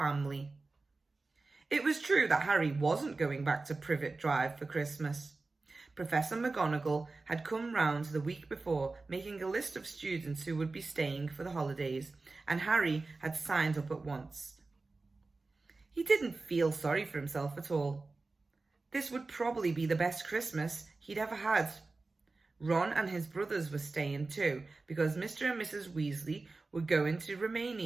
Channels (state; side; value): quieter; left; 3.6 dB